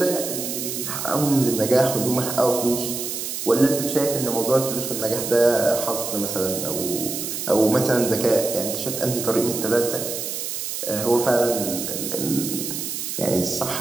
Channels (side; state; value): right; noise; hiss, 5 dB below the sound